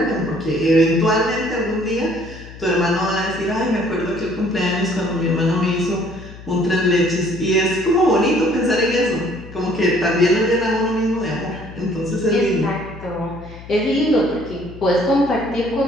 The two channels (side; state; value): left; noise; hum, 16 dB below the sound